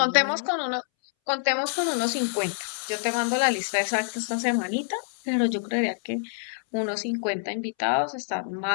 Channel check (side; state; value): right; silent; 61 dB below the other